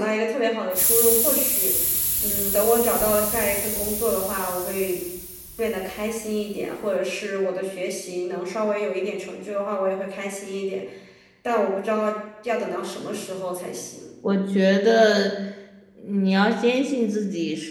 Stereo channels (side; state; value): both; identical; correlation 1.00